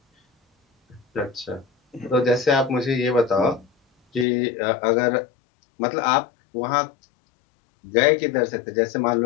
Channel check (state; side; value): drops out; right; at 4.2 s